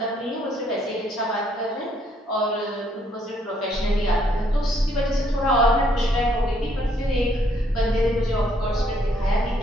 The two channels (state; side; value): normal; both; correlation 0.69